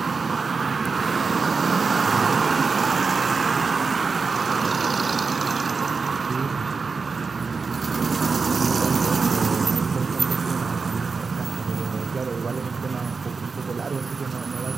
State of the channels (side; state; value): left; quieter; 4.7 dB